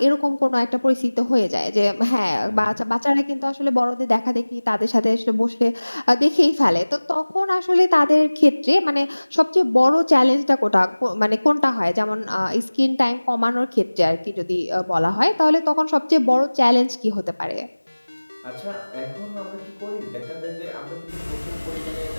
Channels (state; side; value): inverted; both; correlation -1.00